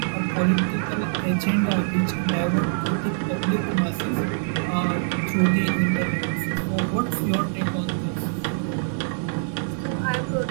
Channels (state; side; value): silent; left; digital silence